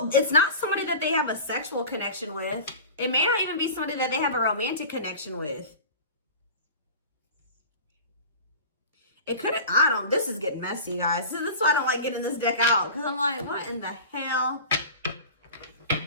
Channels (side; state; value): both; inverted; correlation -0.35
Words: It's not somebody that they have a sexual connection with. It may not even be somebody that they have a romantic connection with. It could have, I don't, this is getting messy, guys. This is why I don't like getting this deck out. Because I'm like, what in the hell?